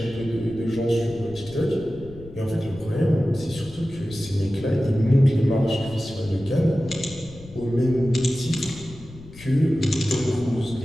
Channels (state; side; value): noise; left; rumble, 18 dB below the sound